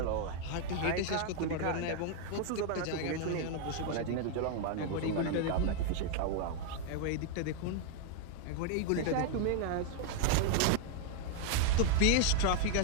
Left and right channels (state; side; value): different; both; correlation 0.00